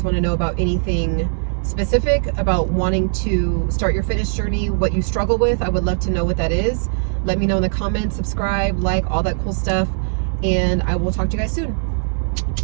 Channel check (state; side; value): silent; left; digital silence